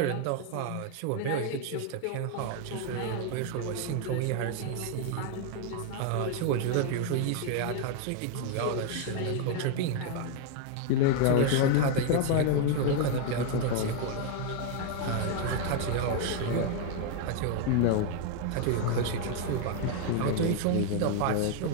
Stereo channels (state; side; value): different; both; correlation 0.01